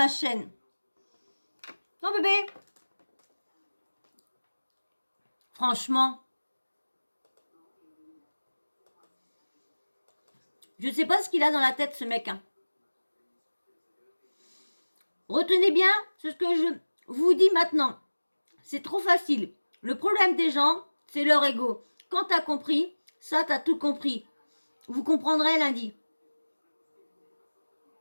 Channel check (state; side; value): inverted; both; correlation -1.00